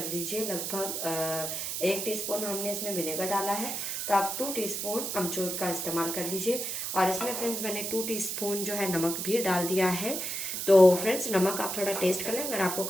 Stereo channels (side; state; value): right; noise; hiss, 3 dB below the sound